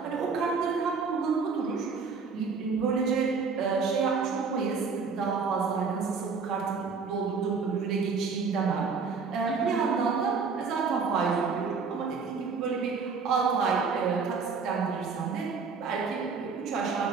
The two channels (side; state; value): left; quieter; 5.1 dB